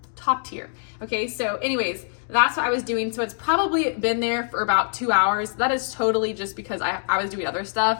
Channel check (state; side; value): silent; right; digital silence